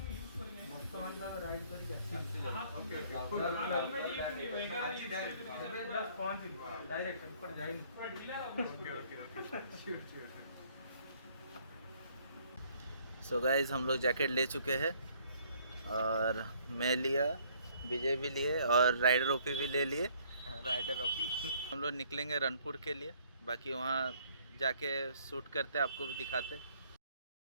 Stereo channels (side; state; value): both; inverted; correlation -0.62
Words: सो गाइज हम लोग जैकेट ले चुके हैं और मैं लिया, विजय भी लिए और राइडर ओपी भी ले लिए। Rider OP. हम लोग निकलेंगे रनपुर के लिए, बाकी वहाँ जाके शूट करते आपको भी दिखाते।